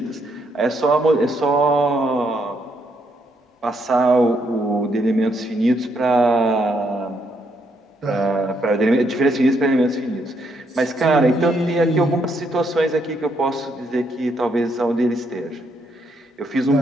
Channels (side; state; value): both; normal; correlation 0.75